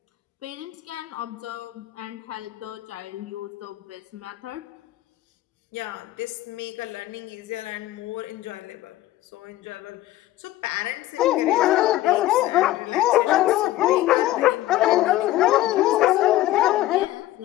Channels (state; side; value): quieter; right; 15.4 dB